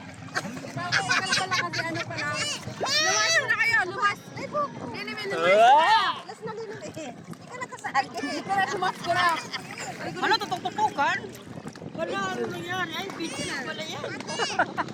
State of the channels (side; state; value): both; identical; correlation 1.00